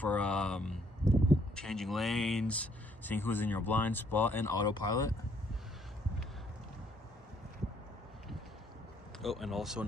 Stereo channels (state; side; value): normal; both; correlation 0.67